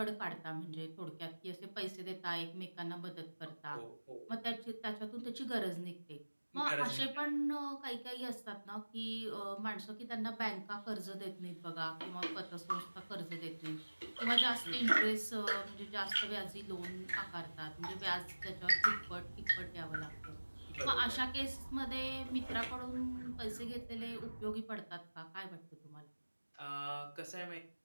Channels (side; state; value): both; inverted; correlation -1.00